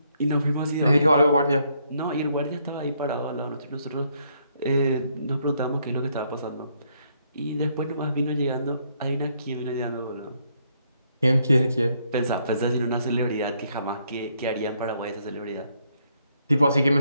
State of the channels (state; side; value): inverted; both; correlation -0.72